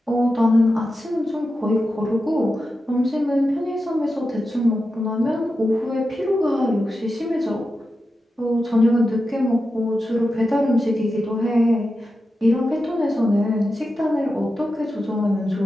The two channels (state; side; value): normal; both; correlation 0.90